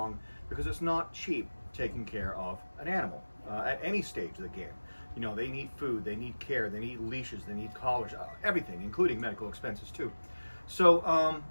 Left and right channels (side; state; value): both; inverted; correlation -1.00